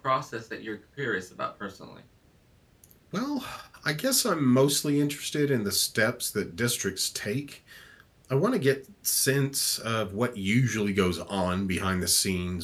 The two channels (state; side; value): identical; both; correlation 1.00